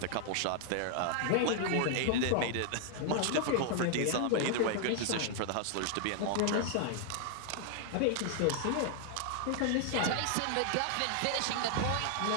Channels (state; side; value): different; both; correlation 0.00